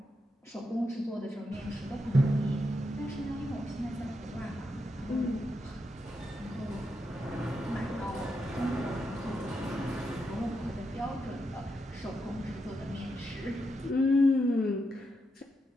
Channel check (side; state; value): both; normal; correlation 0.84